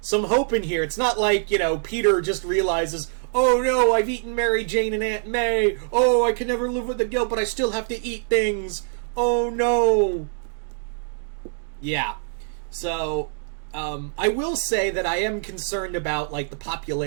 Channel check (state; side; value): silent; left; digital silence